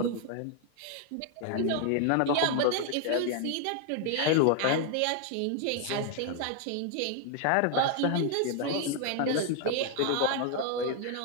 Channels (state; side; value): different; both; correlation 0.00